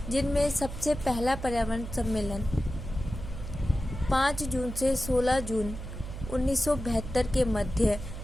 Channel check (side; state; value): right; noise; hum, 9 dB below the sound